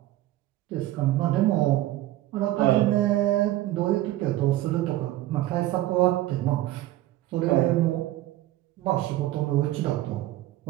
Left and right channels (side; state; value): left; quieter; 15.4 dB